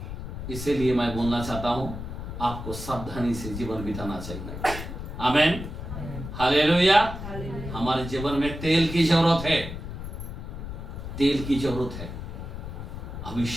इसीलिए मैं बोलना चाहता हूं, आपको सावधानी से जीवन बिताना चाहिए। आमीन। हालेलुया। हमारे जीवन में तेल की जरूरत है। तेल की जरूरत है।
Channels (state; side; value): noise; left; rumble, 8 dB below the sound